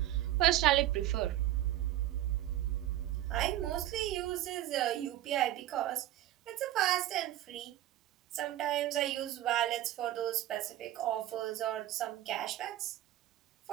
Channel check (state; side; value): quieter; left; 13.9 dB